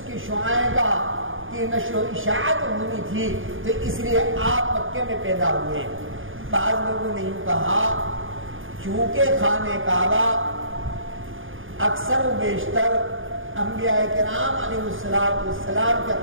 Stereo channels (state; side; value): late; left; 0.58 ms